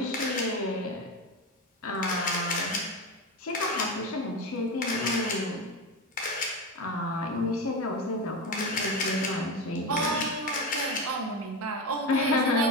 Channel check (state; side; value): normal; both; correlation 0.19